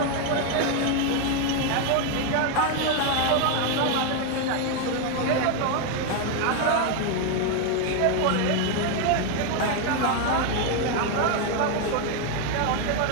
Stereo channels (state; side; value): different; both; correlation 0.01